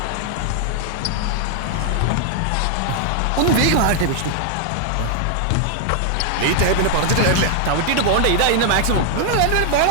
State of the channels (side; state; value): both; different; correlation 0.00